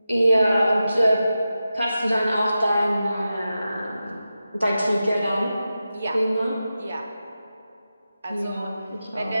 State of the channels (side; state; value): both; inverted; correlation -0.92